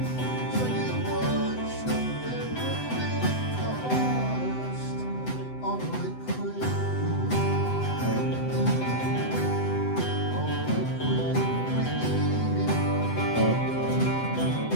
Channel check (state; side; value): late; right; 7.9 ms